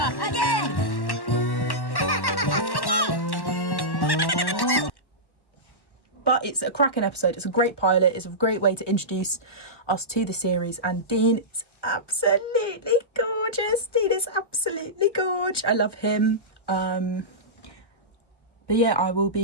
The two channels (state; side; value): late; right; 1.1 ms